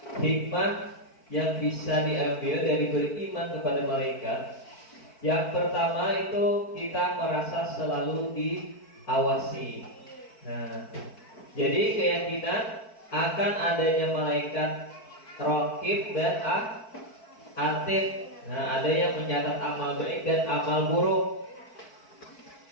hikmah yang bisa diambil dari beriman kepada malaikat. Yang pertama itu kita merasa selalu diawasi. Nah, jadi keyakinan akan adanya malaikat raqib dan atid. Nah, ada yang mencatat amal baik dan amal buruk.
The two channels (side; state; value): right; late; 4.5 ms